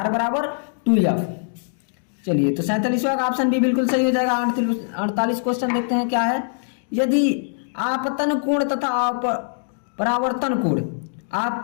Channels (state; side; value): silent; right; digital silence